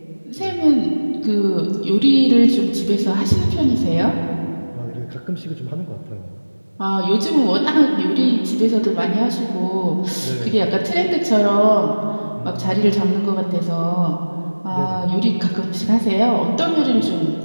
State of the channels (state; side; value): inverted; both; correlation -1.00